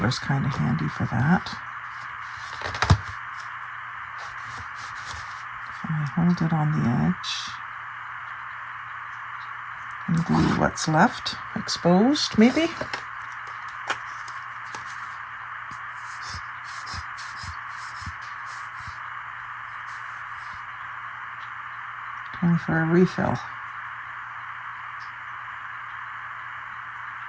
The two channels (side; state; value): both; identical; correlation 1.00